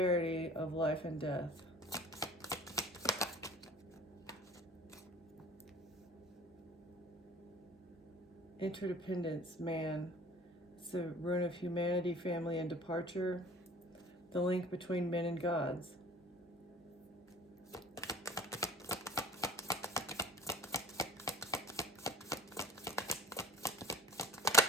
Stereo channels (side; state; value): both; normal; correlation 0.45